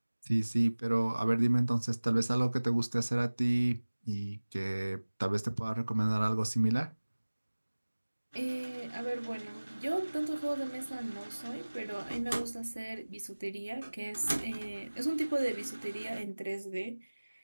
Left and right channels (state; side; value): inverted; both; correlation -1.00